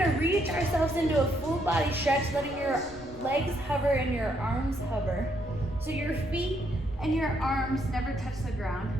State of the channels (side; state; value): left; noise; rumble, 20 dB below the sound